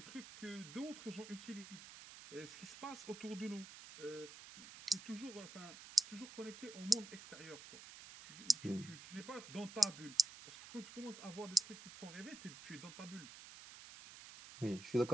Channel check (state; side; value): noise; right; hiss, 14 dB below the sound